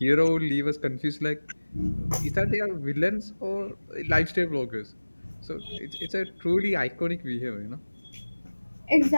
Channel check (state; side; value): inverted; both; correlation -1.00